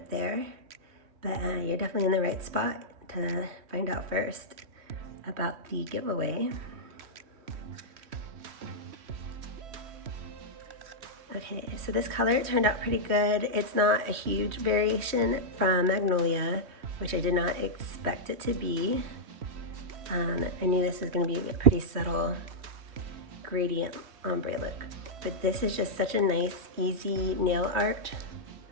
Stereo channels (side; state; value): left; late; 3.2 ms